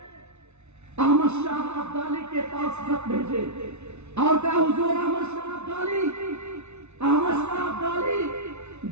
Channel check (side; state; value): left; late; 0.81 ms